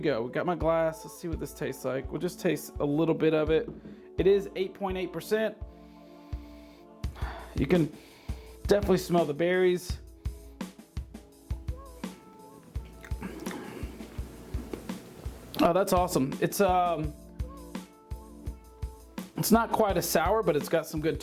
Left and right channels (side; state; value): both; identical; correlation 1.00